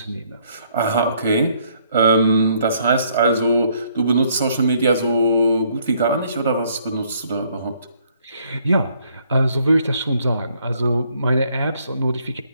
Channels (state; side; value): inverted; both; correlation -0.66